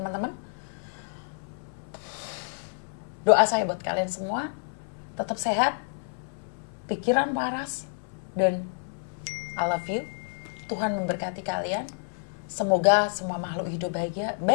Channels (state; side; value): silent; right; 59 dB below the other